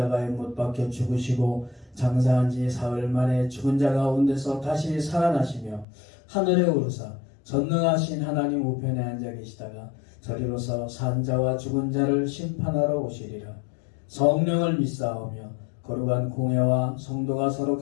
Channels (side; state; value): right; drops out; at 5.9 s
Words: 못 박혀 죽으시고 장사한 지 사흘 만에 죽은 자 가운데서 다시 살아나시며 하늘에 오르사 전능하신 하나님 우편에 앉아 계시다가 저리로서 산자와 죽은 자를 심판하러 오시리라. 성령을 믿사오며 거룩한 공회와 성도가 서로